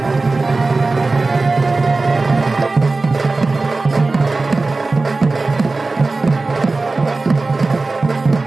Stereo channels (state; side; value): quieter; left; 3.5 dB